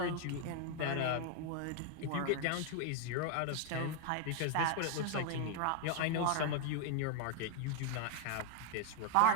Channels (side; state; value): both; different; correlation 0.00